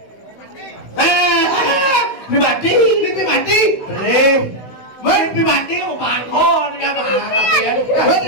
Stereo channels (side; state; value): right; late; 16 ms